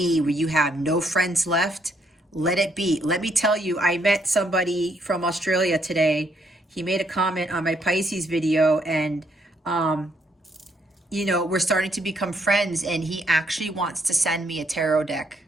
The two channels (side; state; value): both; normal; correlation 0.72